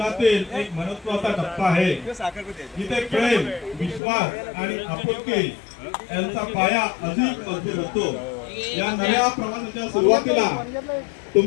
एक महत्त्वाचा टप्पा आहे, जिथे प्रेम, विश्वास आणि आपुलकी यांचा पाया अधिक मजबूत होतो. या नव्या प्रवासाच्या सुरुवातीला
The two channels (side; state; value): right; drops out; at 4.0 s